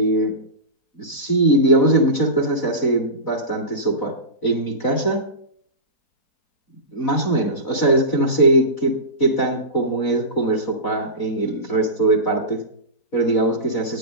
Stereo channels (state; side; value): late; right; 4.0 ms